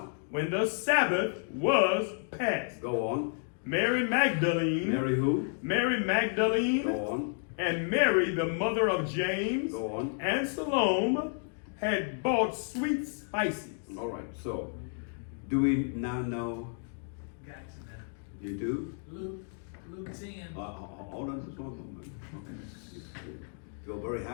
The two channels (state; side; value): silent; right; 57 dB below the other